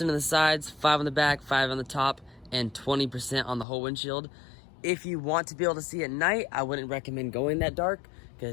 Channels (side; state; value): right; drops out; at 3.7 s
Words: on the sides, 5 on the back, 5 on the top, and 20% on the whole windshield. If you want to be able to see at night, I wouldn't recommend going that dark